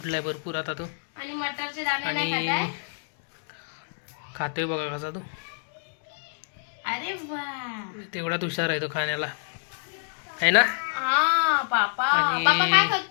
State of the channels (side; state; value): right; silent; digital silence